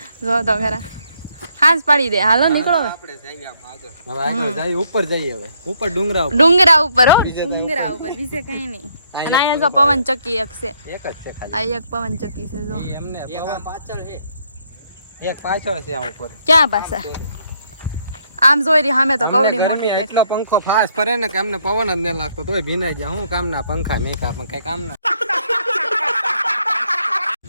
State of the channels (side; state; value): both; inverted; correlation -0.71